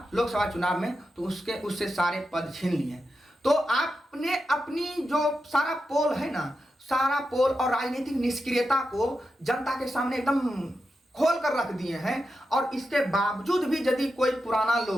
लोकसभा चुनाव में, तो उससे सारे पद छीन लिए। तो आपने अपनी जो सारा पोल है ना, सारा पोल और राजनीतिक निष्क्रियता को जनता के सामने एकदम खोल कर रख दिए हैं। और इसके बावजूद भी यदि कोई पुराना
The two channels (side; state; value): both; normal; correlation 0.89